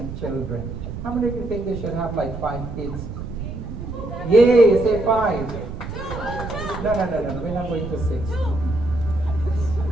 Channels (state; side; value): noise; right; rumble, 8 dB below the sound